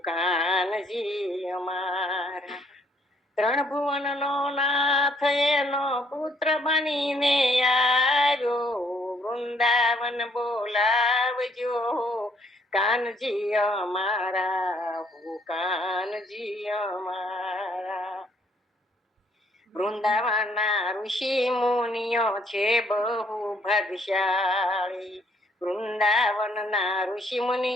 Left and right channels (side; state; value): both; normal; correlation 0.66